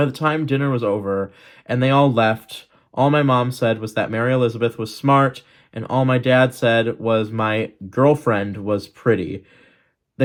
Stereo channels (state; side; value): identical; both; correlation 1.00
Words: the time dinner was over and they all left, all my mom said was that Mary Elizabeth was smart, and all my dad said was my girlfriend was pretty.